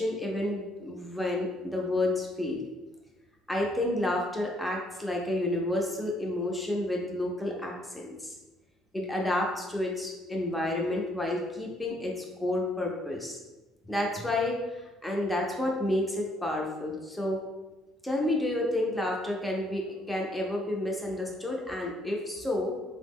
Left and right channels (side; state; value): both; normal; correlation 0.69